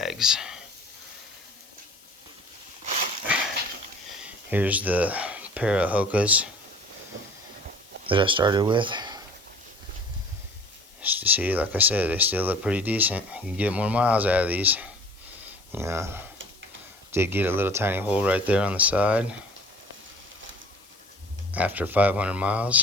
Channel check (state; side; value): noise; left; hiss, 26 dB below the sound